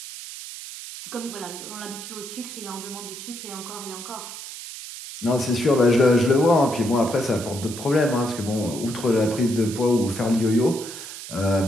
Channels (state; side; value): noise; right; hiss, 11 dB below the sound